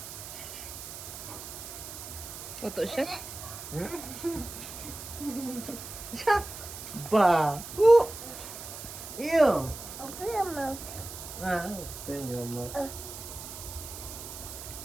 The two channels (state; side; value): noise; right; hiss, 11 dB below the sound